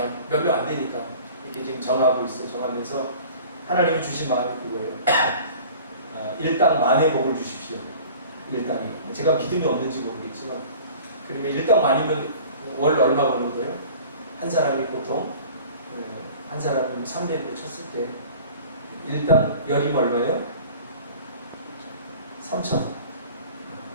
몇 명 안 되니까 이렇게 지금 정하고 있어요. 정하면서 하나님이 주신 마음이 그거예요. 일당 만의 복을 주십시오. 일당이. 제가 믿음이 없는지 모르겠지만 그러면 일당 만이면 월 얼마 버는 거예요? 한 사람이 보통 한 사람이 300을 쳤을 때 일당 열이면 얼마예요? 3,000.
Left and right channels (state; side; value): inverted; both; correlation -0.45